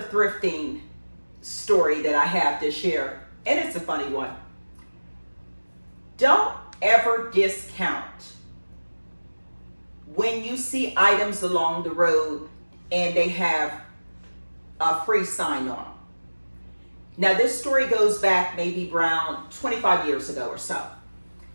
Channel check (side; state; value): both; inverted; correlation -1.00